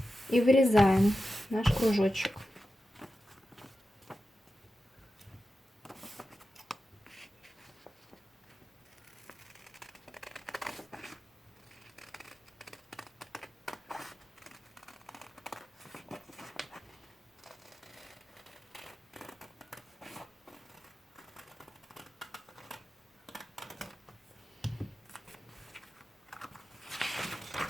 И вырезаем наш кружочек.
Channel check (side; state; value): both; normal; correlation 0.92